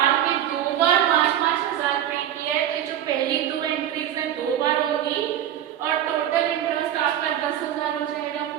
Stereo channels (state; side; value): quieter; left; 11.0 dB